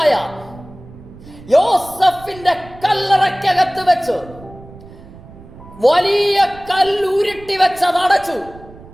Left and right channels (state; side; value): noise; right; rumble, 20 dB below the sound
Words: യോസഫിന്റെ കല്ലറയ്ക്കകത്ത് വെച്ച് വലിയ കല്ലുരുട്ടി വെച്ച് അതടച്ചു.